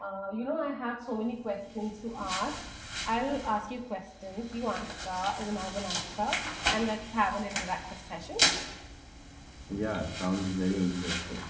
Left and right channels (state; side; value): identical; both; correlation 1.00